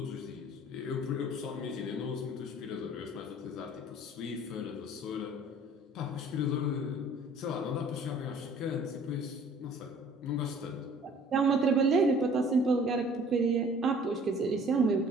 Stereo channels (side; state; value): both; normal; correlation 0.52